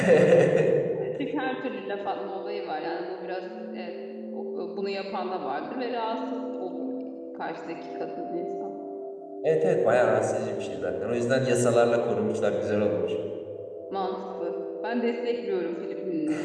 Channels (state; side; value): identical; both; correlation 1.00